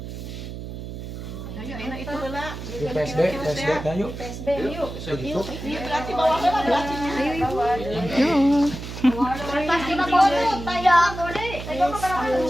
Ayo enak itu heula. Di PSD dah yuk. PSB yuk. Begitu. Ini berarti bawah heula berarti. Yo. Pasti ka bodo tayo. Tayo ka para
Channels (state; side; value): noise; right; hum, 9 dB below the sound